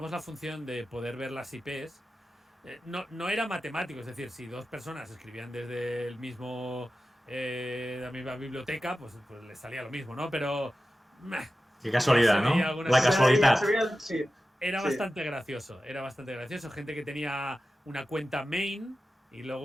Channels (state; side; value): normal; both; correlation 0.94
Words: la función de poder ver las IPs, no era matemático, es decir, si 2 personas escribían desde el mismo la misma biblioteca, pues les salía lo mismo, ¿no? Pero qué casualidad, ¿no? La casualidad. Era bastante gracioso, gente que tenía una cuenta main y